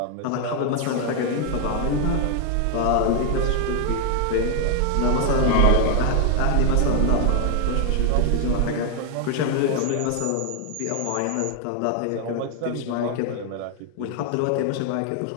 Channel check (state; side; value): different; both; correlation 0.00